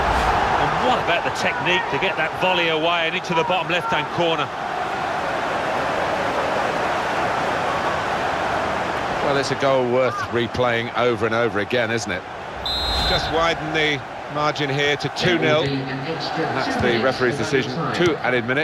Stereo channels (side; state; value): both; identical; correlation 1.00